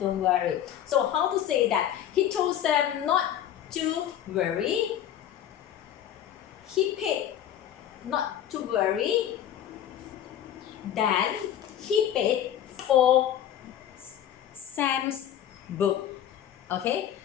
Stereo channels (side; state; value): right; quieter; 10.6 dB